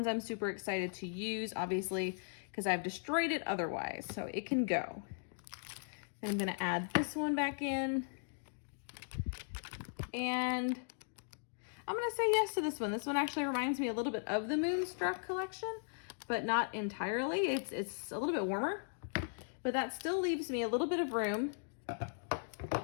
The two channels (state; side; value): silent; right; digital silence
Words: I'm super excited to use, obviously, because I've destroyed it otherwise, so it can go. Then I'm gonna add this one back in, and I'm gonna say yes to this one. This one actually reminds me a little bit of the Moonstruck collection, but not entirely. It's a little bit warmer, but that still leaves me a little bit of room